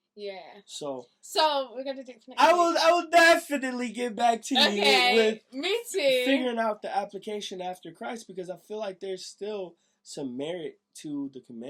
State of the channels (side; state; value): both; identical; correlation 1.00